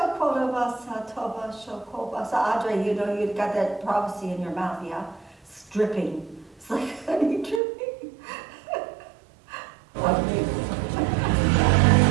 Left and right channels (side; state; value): left; drops out; at 7.6 s